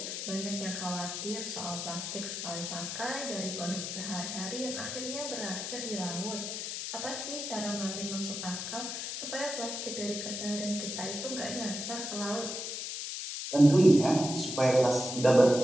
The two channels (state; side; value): noise; left; hiss, 5 dB below the sound